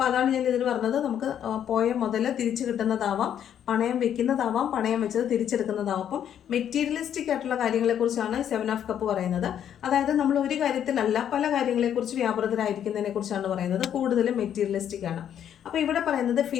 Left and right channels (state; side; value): quieter; right; 9.6 dB